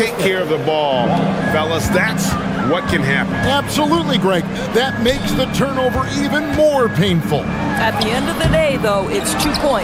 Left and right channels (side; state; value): both; identical; correlation 1.00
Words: care of the ball, fellas, that's what can happen. Absolutely, Greg. That makes the turnover even more painful. At the end of the day, though, it's 2